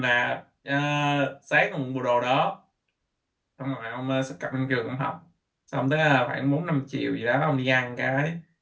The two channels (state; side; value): identical; both; correlation 1.00